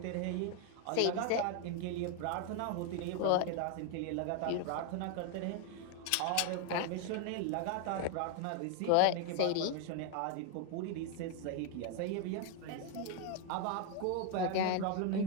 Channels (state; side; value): different; both; correlation 0.01